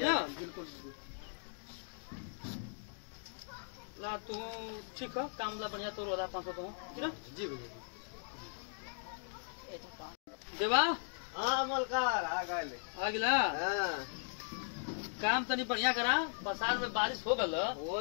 है बिल्कुल ला तू ठीक हो काम ला बढ़िया तोर वाला 500 तो ठीक ना जी भैया देवा हाँ मलकार आ गए। आ गिला हाँ काम तनी बढ़िया करा बसार में बारिश हो गल वो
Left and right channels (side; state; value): right; silent; digital silence